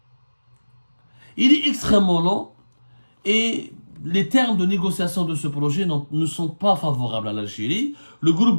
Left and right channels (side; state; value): both; inverted; correlation -1.00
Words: il est extrêmement lent et les termes de négociation de ce projet ne sont pas favorables à l'Algérie. Le groupe